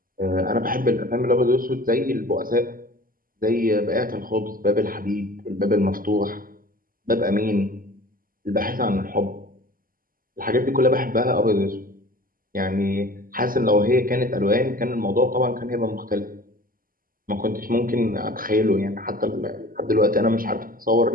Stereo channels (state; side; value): late; left; 0.41 ms